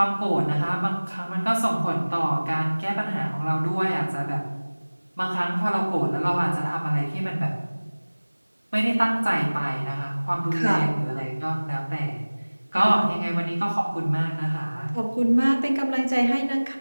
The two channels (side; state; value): both; inverted; correlation -1.00